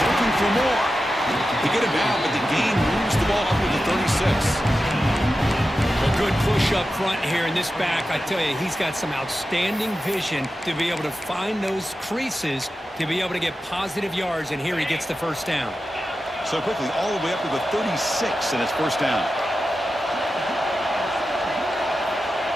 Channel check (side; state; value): both; normal; correlation 0.92